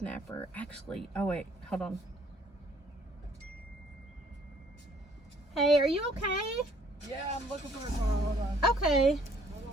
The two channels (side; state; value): both; normal; correlation 0.61